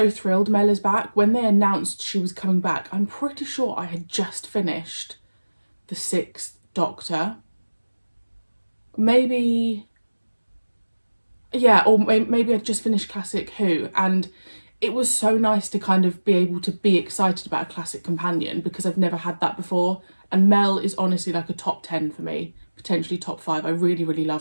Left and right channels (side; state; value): both; inverted; correlation -1.00